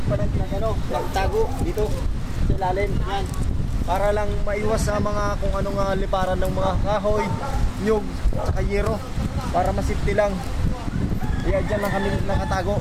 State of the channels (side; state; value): both; identical; correlation 1.00